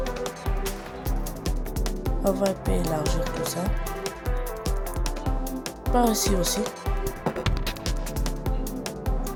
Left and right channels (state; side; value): identical; both; correlation 1.00